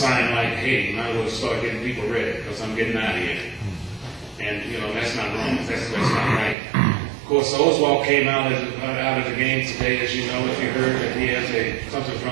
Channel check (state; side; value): drops out; left; at 6.6 s